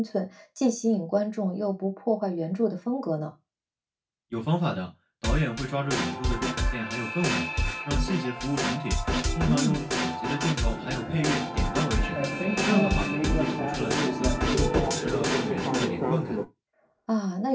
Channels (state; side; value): identical; both; correlation 1.00